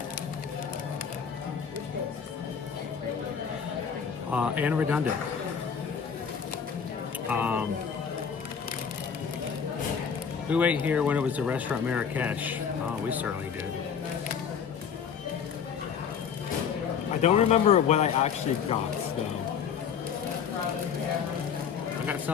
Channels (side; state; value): right; quieter; 7.0 dB